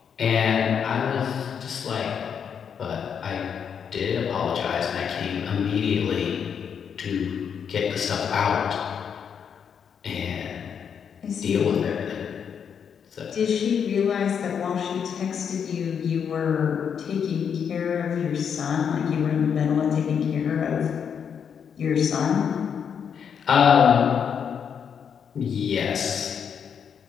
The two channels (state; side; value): quieter; right; 7.4 dB